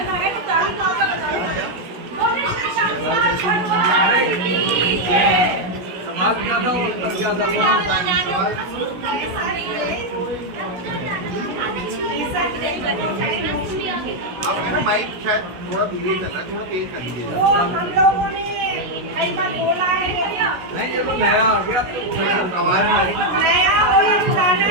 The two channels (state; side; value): late; left; 16 ms